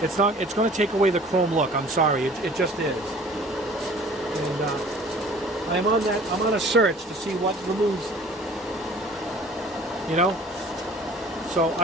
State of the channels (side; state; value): both; normal; correlation 0.48